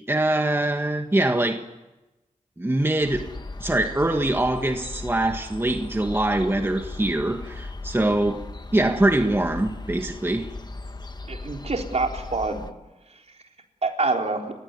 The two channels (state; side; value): normal; both; correlation 0.77